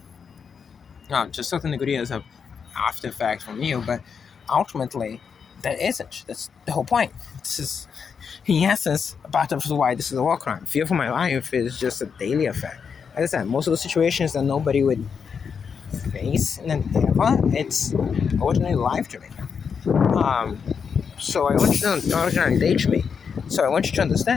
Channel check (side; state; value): right; quieter; 6.4 dB